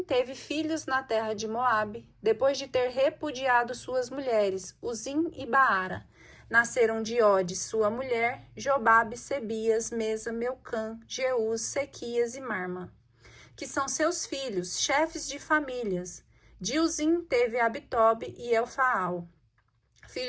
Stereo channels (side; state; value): both; identical; correlation 1.00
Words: teve filhos na terra de Moabe, depois de ter repudiado suas mulheres, Uzim e Baara. Nasceram de Ode, sua mulher, Jobabe, Sebias, Mesa, Meucã, Jeús, Sequias e Marma, que são seus filhos, chefes de famílias. De Uzim teve Abitobe e Elfaal,